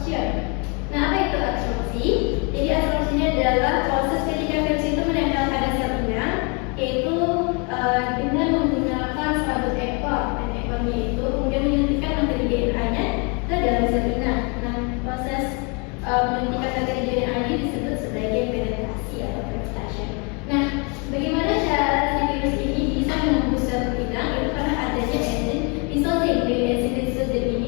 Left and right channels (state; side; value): quieter; right; 33.5 dB